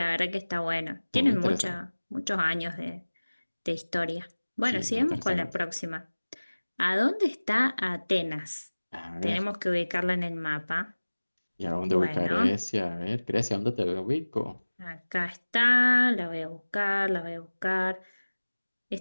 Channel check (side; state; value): both; inverted; correlation -1.00